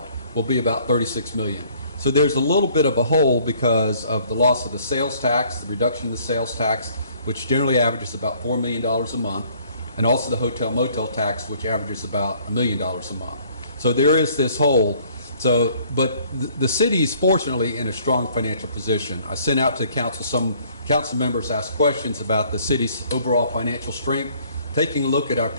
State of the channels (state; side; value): inverted; both; correlation -0.59